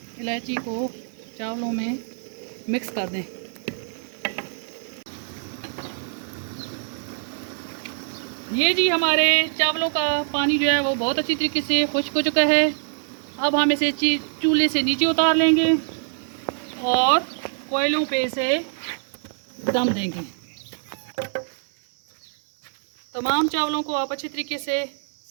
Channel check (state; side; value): silent; left; digital silence